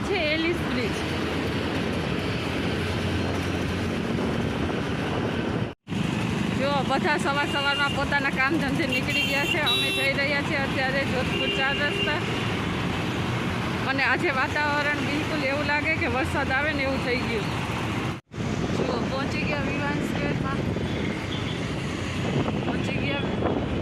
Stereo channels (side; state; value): both; identical; correlation 1.00